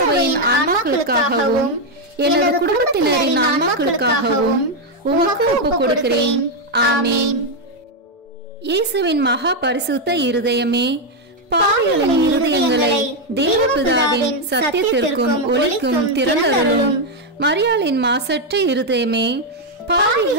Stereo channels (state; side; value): normal; both; correlation 0.02